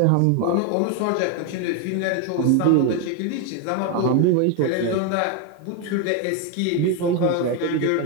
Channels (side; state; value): both; different; correlation 0.01